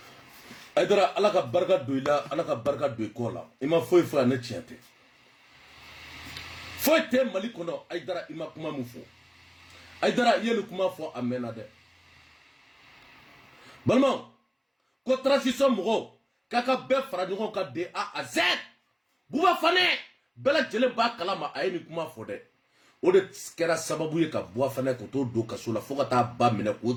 Aïdara ala ka barika don i la ala ka barika don i kɔ la i ma foyi fɔ a ne tiɲɛ tɛ foyi tɛ mali kɔnɔ Aïdara i ma kuma min fɔ Aïdara i ye nin kuma fɔ a mɛnna dɛ balimaw ko transition mɔgɔw k'a ka bɛɛ fara ɲɔgɔn kan de A à Z Buba Fane bɛɛ lajɛlen b'a kalama a ye nin kuma fɔ dɛ o de kɛra sababu ye ka Buba Fane ko to don kaso la fo ka taa ba minɛ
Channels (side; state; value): both; identical; correlation 1.00